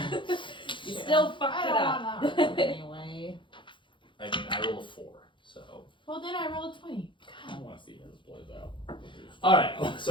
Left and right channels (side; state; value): right; late; 0.24 ms